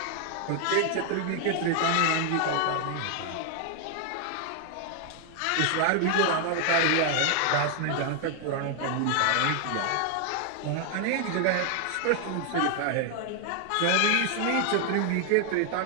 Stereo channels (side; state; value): both; different; correlation 0.00